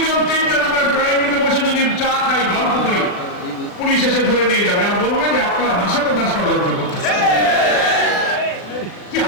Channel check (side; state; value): right; late; 40 ms